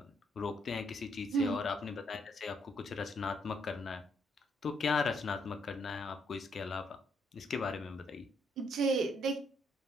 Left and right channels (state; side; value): normal; both; correlation 0.72